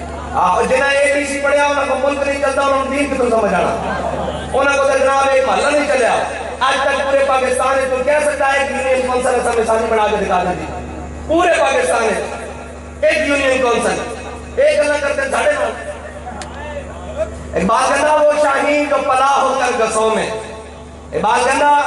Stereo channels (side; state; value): both; identical; correlation 1.00